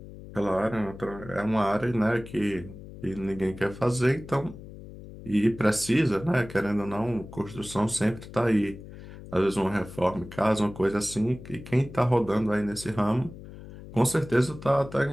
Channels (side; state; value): left; noise; hum, 15 dB below the sound